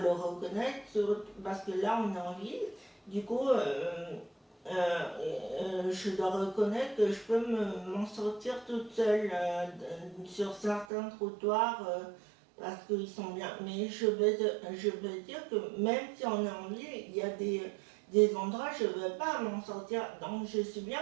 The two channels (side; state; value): left; drops out; at 10.9 s